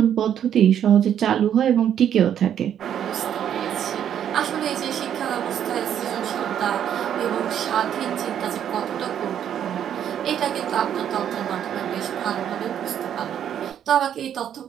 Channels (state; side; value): quieter; left; 9.6 dB